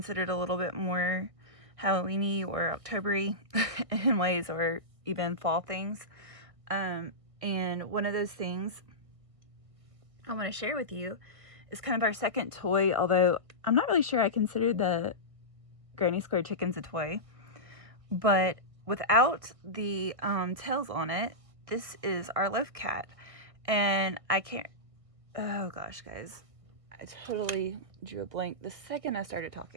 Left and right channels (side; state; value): left; late; 1.6 ms